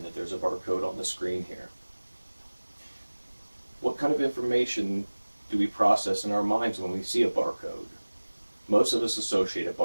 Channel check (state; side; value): inverted; both; correlation -1.00